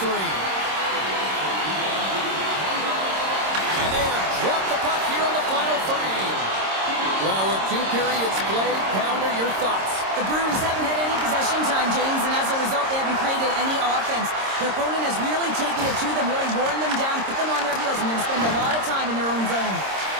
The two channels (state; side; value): late; left; 26 ms